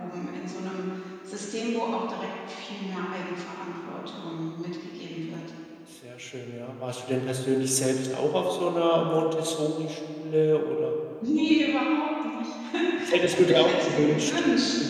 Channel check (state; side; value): identical; both; correlation 1.00